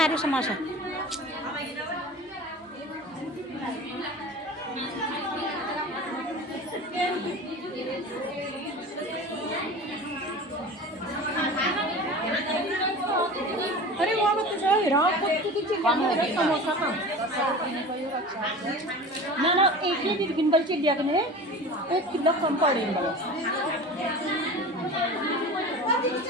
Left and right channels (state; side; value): normal; both; correlation 0.35